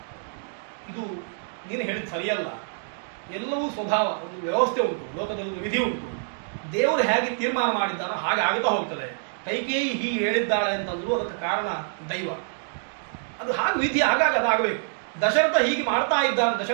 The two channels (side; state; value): left; silent; digital silence